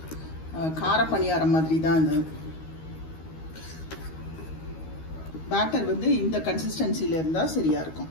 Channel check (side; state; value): right; late; 13 ms